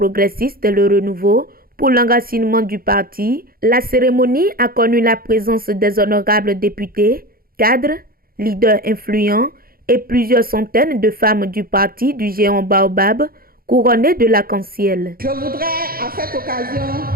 Le Renouveau pour l'enracinement du parti, la cérémonie a connu la présence des honorables députés, cadres, leaders influents et plusieurs centaines de femmes du parti du géant Baobab couronnées de l'arc-en-ciel. Je voudrais à cette occasion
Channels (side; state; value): left; late; 0.43 ms